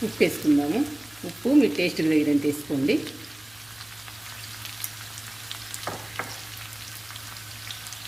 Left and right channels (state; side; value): noise; right; hum, 27 dB below the sound